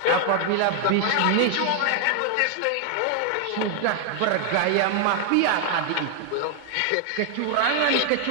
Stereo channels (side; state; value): both; different; correlation 0.00